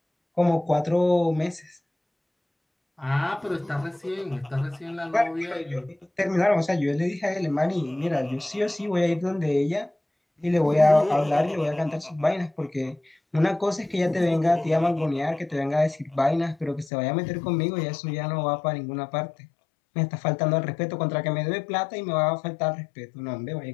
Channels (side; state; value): right; drops out; at 16.9 s